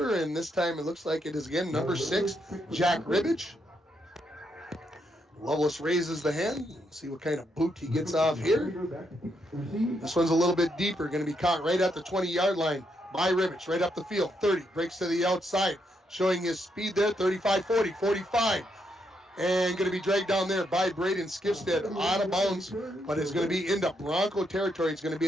and this time it looks like it is again number 6, Jack Ribbage. Loveless raises the hand. See what kind of boot he gets off here. This one's a little bit deeper. Going to be caught right at the 20-yard line by Ribbage. Right up the field. 30. Breaks to the outside. Showing his speed there. 35, 40, 45. And going to be dragged down there by Braden Skipstead out of bounds. But it's going to be into Bronco territory. It's going to be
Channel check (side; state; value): both; normal; correlation 0.78